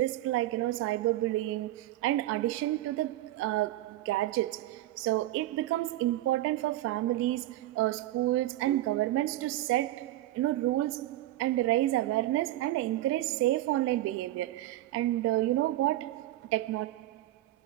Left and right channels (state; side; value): quieter; left; 15.5 dB